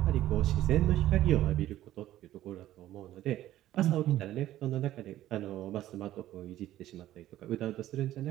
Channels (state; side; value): quieter; left; 13.8 dB